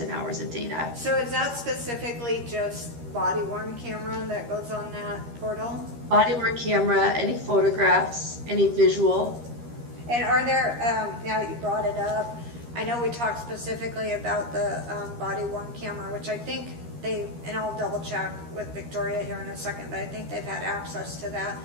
hours of data. So is that specifically just body-worn camera that goes on that portal? Body-worn camera, any photographs, any visual. And are there, now that you brought it up, I know we talked specifically about the body-worn camera, which I think and I'll double check with Victoria here in a second, but I think they've had access to that.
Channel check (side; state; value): left; late; 13 ms